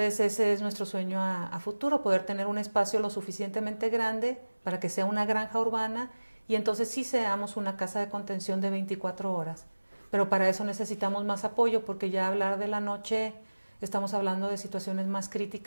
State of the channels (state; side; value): inverted; both; correlation -1.00